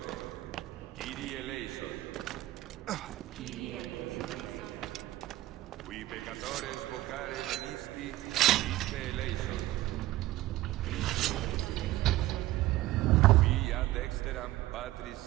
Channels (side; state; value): left; quieter; 16.4 dB